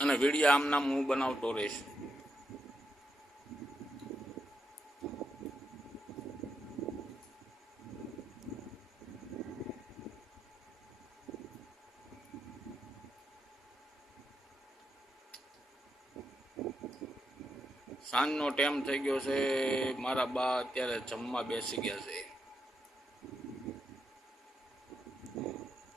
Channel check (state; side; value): normal; both; correlation 0.81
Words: વિડીયો આમ નામ હું બનાવતો રહીશ. સાંજનો ટાઈમ થઈ ગયો છે. મારા બા અત્યારે જમવા બેસી ગયા છે.